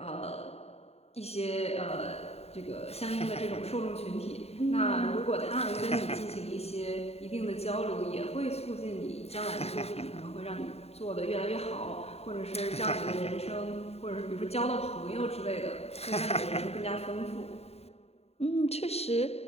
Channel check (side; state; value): right; late; 0.30 ms